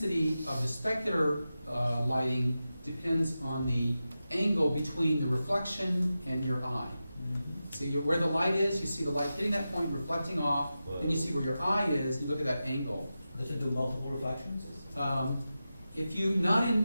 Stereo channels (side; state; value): both; inverted; correlation -0.92